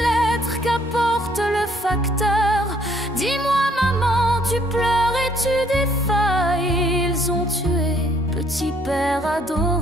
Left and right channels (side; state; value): both; normal; correlation 0.64